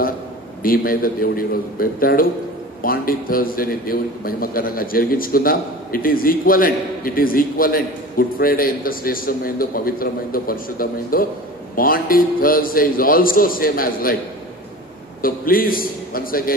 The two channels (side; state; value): both; normal; correlation 0.36